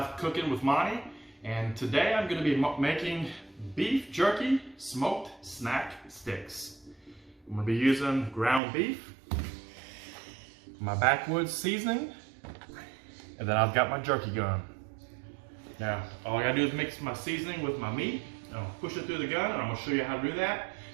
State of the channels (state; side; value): drops out; left; at 8.6 s